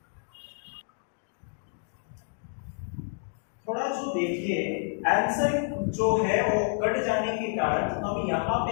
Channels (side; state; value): right; silent; 58 dB below the other